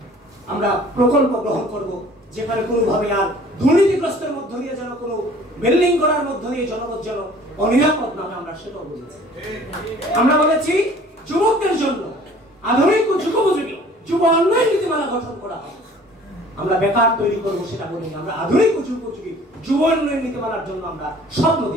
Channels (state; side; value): normal; both; correlation 0.51